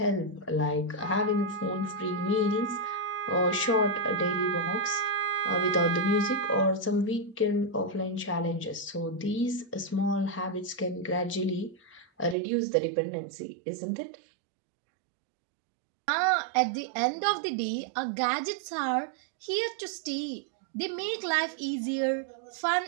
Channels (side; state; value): left; drops out; at 12.4 s